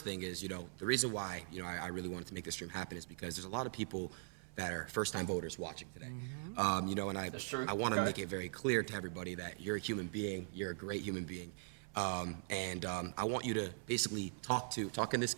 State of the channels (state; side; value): silent; left; 50 dB below the other